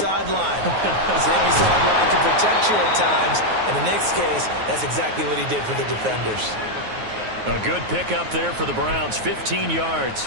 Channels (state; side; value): late; left; 9.4 ms